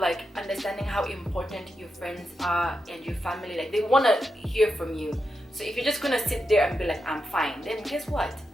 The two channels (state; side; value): normal; both; correlation 0.87